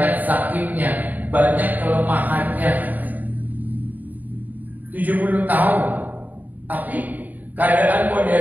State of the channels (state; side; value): late; left; 0.082 ms